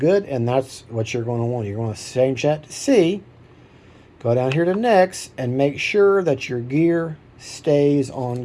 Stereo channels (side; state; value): both; identical; correlation 1.00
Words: and that's what you're going to want. You're going to change that to C. Go down here to Next, and make sure that your gear stays